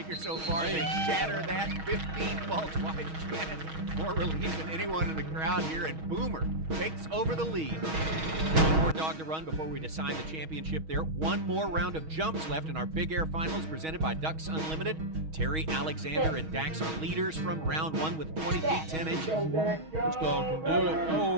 so far. They shatter that. 15 faults wide. Janet, more relief than anyone in the crowd here. And Boomer takes over the lead. One more dog to run before we decide the championship there. One more round of jumps left in our Big Air Finals presented by Ducks Unlimited. Terry, Alexander, and Dax are leaders from round 1 with 20 feet 10 inches. This dog can do it.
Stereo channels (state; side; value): late; left; 6.3 ms